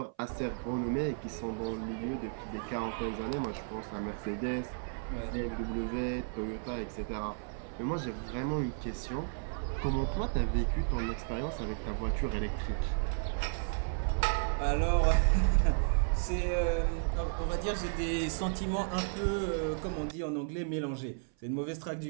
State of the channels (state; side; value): silent; left; 55 dB below the other